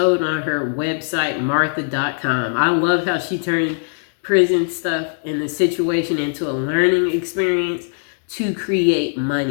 on her website martha.com. I love how she turned prison stuff and the situation into a learning experience to create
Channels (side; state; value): right; silent; digital silence